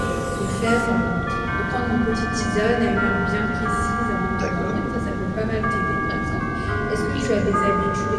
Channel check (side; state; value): both; identical; correlation 1.00